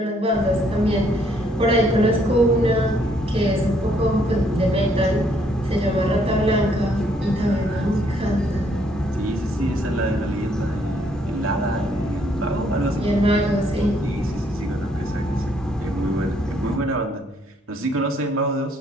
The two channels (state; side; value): normal; both; correlation 0.68